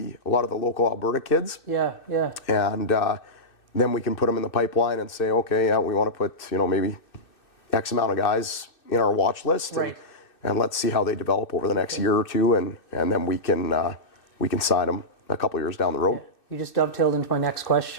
local Alberta kids. And then we can put them in the pipeline and say, okay, we want to put maybe X amount of guys in our watch list, and let's see how they develop over the next year or two, and then we can sign them a couple years down the road. You just dovetailed into my next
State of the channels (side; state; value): right; late; 2.6 ms